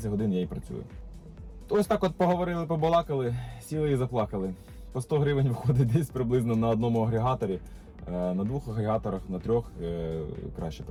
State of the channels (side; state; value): both; identical; correlation 1.00